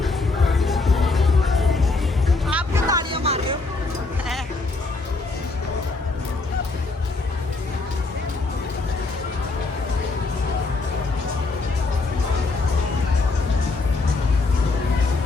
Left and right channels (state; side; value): quieter; right; 3.6 dB